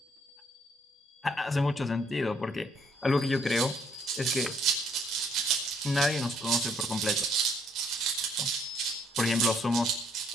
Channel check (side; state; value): both; normal; correlation 0.67